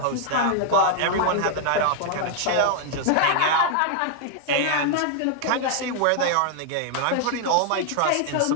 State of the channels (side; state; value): both; different; correlation 0.00